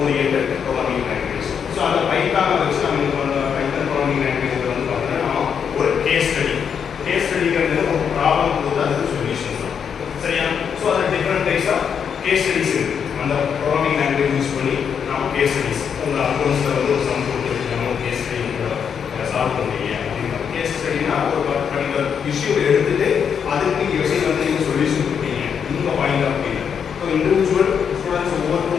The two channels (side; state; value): right; quieter; 7.3 dB